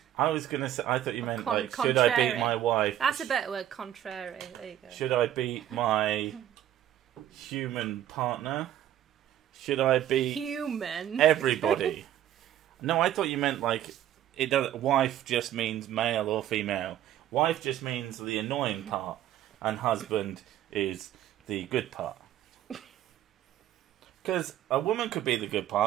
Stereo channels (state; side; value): quieter; left; 11.8 dB